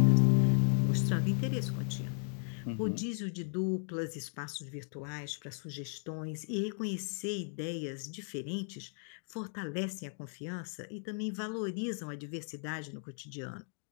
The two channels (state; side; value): silent; right; 54 dB below the other